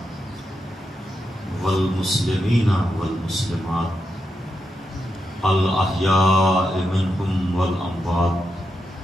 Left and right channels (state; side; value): normal; both; correlation 0.85